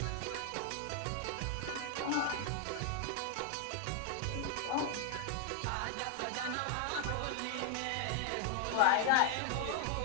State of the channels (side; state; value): both; different; correlation 0.00